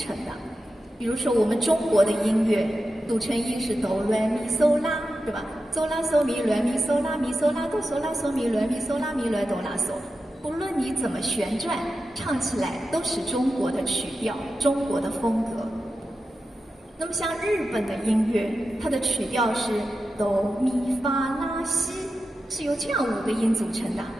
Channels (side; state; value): both; normal; correlation 0.91